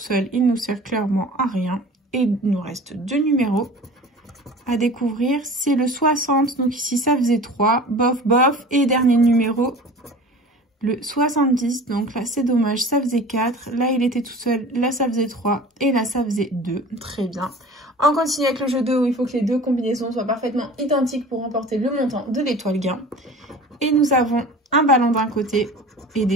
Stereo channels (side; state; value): both; normal; correlation 0.40